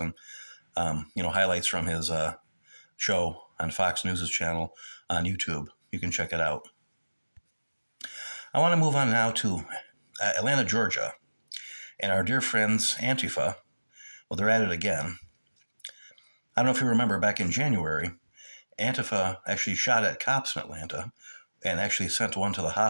highlights from his show on Fox News' channel on YouTube. You can check it out. I want to move on now to Atlanta, Georgia. And our dear friends, Antifa, well, they're at it again. I don't know if you remember, back in January, Antifa actually shot at cops in Atlanta and actually sent one to the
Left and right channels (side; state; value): both; inverted; correlation -1.00